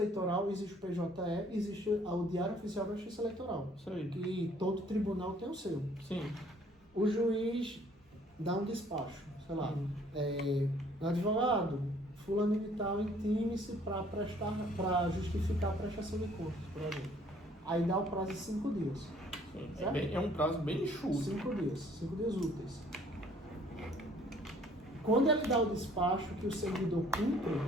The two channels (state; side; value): normal; both; correlation 0.59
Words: existe o PJE, existe o diário oficial da justiça eleitoral. Que todo tribunal tem o seu. Sim. O juiz dá um despacho, sei lá, advogado, fulano de tal, intime-se para justificar a prestação de contas, por exemplo. Aí dá o prazo de 5 dias. É um prazo bem enxuto. 5 dias úteis. Quando ele dá o despacho que o servidor cumpre